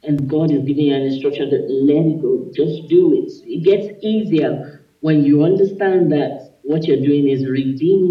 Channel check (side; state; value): both; identical; correlation 1.00